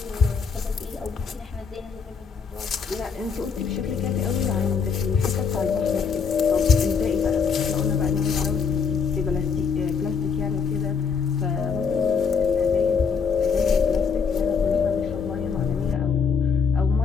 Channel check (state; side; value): quieter; right; 5.8 dB